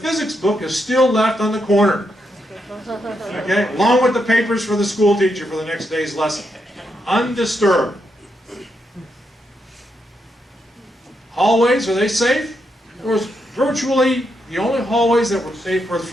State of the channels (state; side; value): normal; both; correlation 0.81